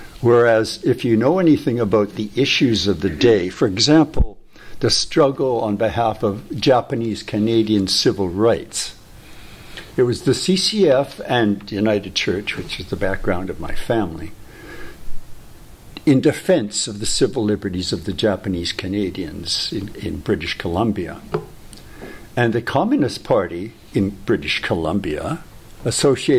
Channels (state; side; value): identical; both; correlation 1.00